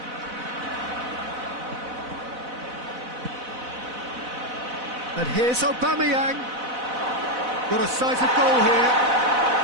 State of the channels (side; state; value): left; late; 4.0 ms